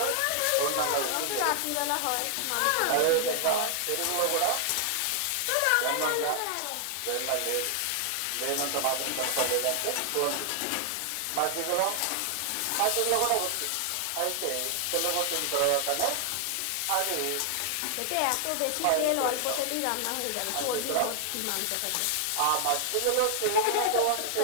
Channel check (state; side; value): different; both; correlation 0.00